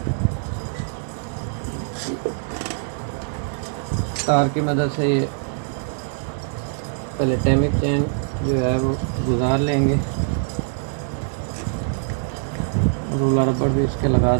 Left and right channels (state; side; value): silent; left; digital silence